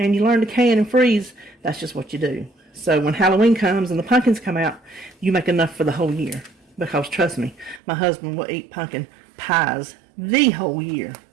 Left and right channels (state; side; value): drops out; left; at 7.8 s